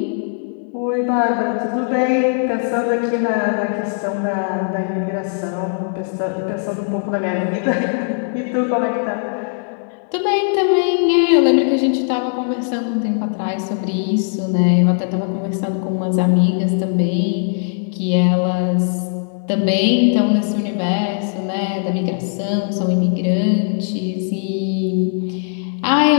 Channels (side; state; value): right; silent; digital silence